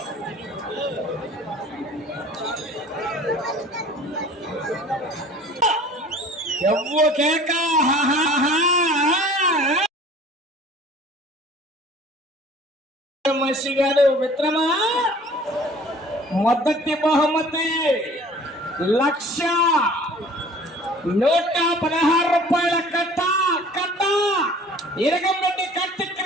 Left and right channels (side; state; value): both; normal; correlation 0.48